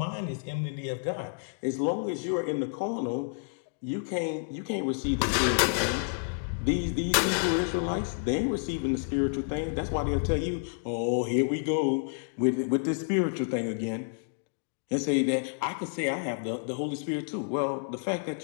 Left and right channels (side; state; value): right; silent; digital silence